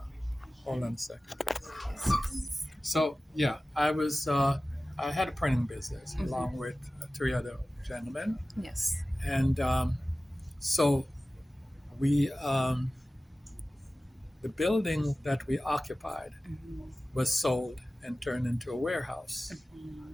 Hold on a second. Yes. Yes. So yeah, I had a printing business Mm-hmm. along with three other gentlemen, Yes. and so we the building that we occupied Mm-hmm. was sold and turned into a warehouse. Mm-hmm.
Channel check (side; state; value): both; normal; correlation 0.96